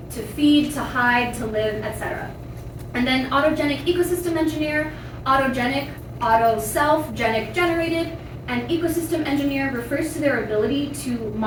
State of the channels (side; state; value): both; identical; correlation 1.00